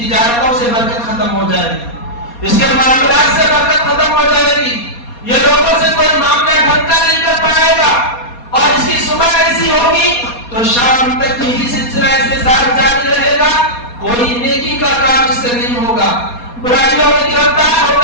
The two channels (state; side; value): late; right; 4.2 ms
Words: سے برکت ختم ہو جائے گی، اس کے معاملات سے برکت ختم ہو جائے گی، یہ لوگوں سے کوئی معاملہ ڈھنگا نہیں کر پائے گا، اور اس کی صبح ایسی ہوگی تو شام تک یہی سلسلہ اس کے ساتھ جاری رہے گا، کوئی نیکی کا کام اس سے نہیں ہوگا، برائیوں میں گرفتار